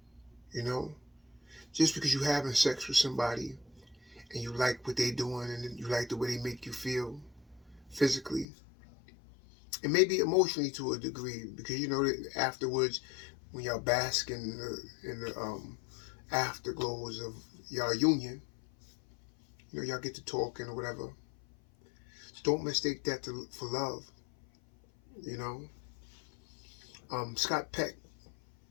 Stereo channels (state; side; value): drops out; right; at 8.5 s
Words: You know, just because you're having sex with somebody and you like what they're doing and you like the way they make you feel physically and maybe emotionally to a degree, because that afterwards, when y'all bask in the afterglows of y'all union, y'all get to talking or whatever. Don't mistake that for love. You know, Scott Peck,